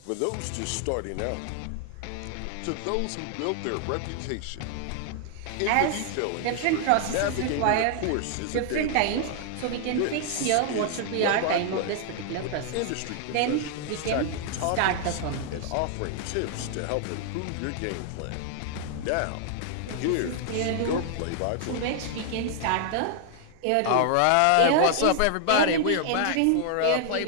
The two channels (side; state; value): both; different; correlation 0.00